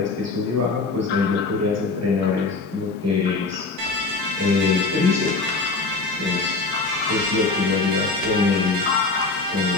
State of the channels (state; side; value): quieter; right; 3.8 dB